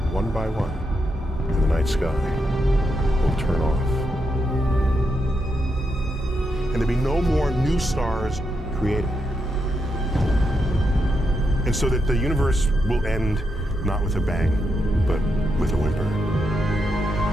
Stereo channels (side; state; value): both; normal; correlation 0.83